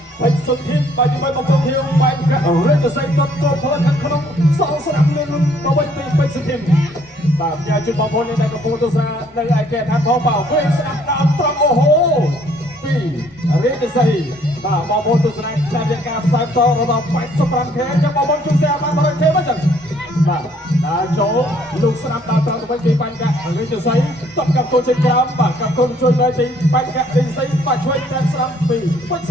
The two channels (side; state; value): both; normal; correlation 0.63